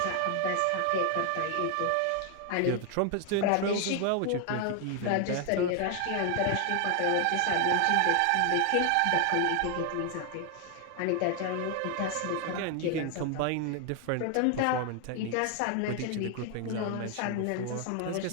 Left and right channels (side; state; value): both; different; correlation 0.00